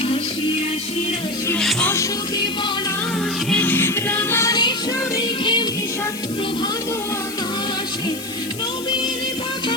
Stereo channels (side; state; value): left; noise; hiss, 12 dB below the sound